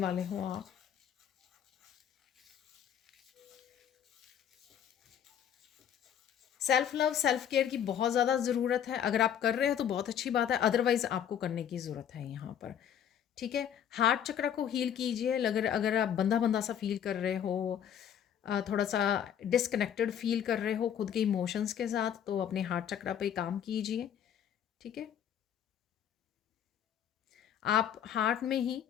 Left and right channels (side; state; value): right; quieter; 9.1 dB